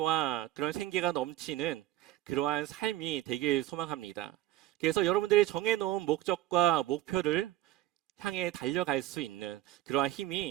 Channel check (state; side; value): quieter; left; 15.0 dB